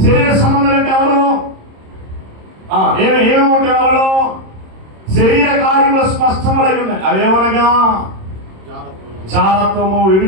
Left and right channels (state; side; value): late; left; 26 ms